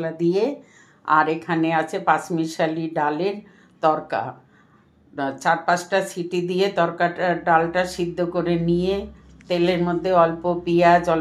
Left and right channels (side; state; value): both; identical; correlation 1.00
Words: দিয়ে। আর এখানে আছে পাঁচমিশালি ডালের তরকা। 4-5টা সিটি দিয়ে তরকাটা ডালটা সিদ্ধ করে নিয়ে তেলের মধ্যে অল্প পেঁয়াজ,